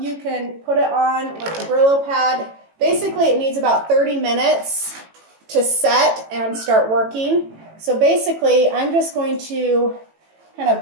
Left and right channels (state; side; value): late; left; 18 ms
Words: can put it on with the Brillo pad. Basically, it needs about 30 minutes to set and start working. So basically, I'm just going to kind of